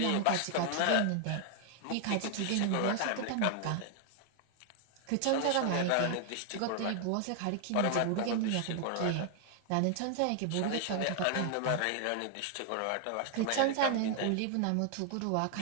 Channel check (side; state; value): both; different; correlation 0.00